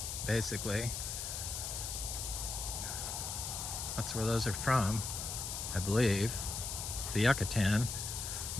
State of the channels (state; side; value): noise; left; hiss, 4 dB below the sound